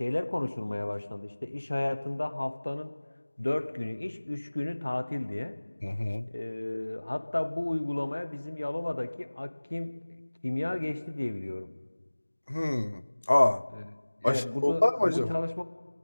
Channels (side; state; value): both; inverted; correlation -1.00